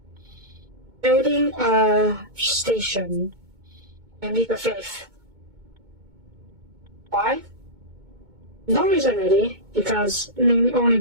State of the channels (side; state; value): left; late; 2.2 ms